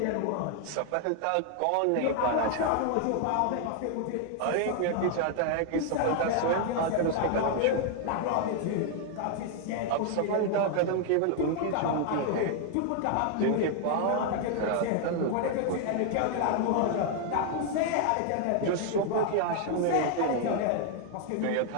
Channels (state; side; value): different; both; correlation 0.00